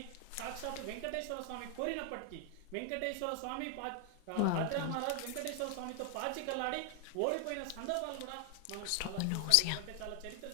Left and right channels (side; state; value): both; different; correlation 0.00